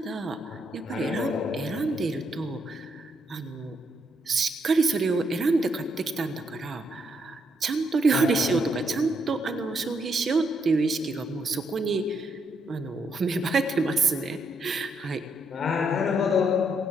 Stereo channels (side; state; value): both; normal; correlation 0.76